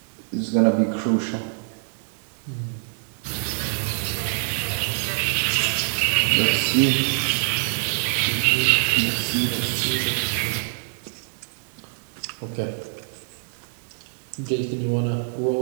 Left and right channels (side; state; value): left; silent; digital silence